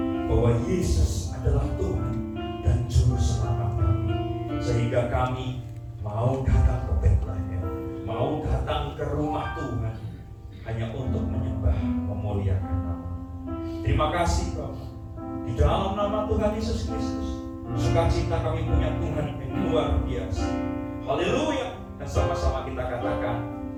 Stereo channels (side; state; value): both; identical; correlation 1.00